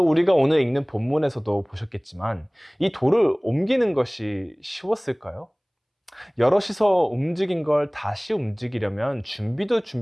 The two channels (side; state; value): both; identical; correlation 1.00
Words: 우리가 오늘 읽는 본문에서도 보셨겠지만 이 돌을 옮기는 것이 쉬웠을까요? 여럿이서 움직인 걸 다시 움직이려면 준비로